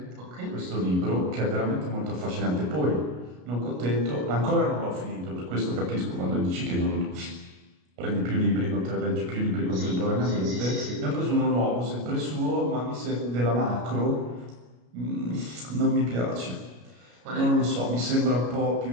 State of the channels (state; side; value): late; left; 33 ms